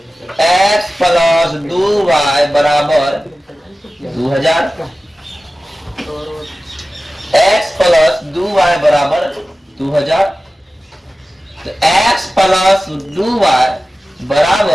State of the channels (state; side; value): normal; both; correlation 0.96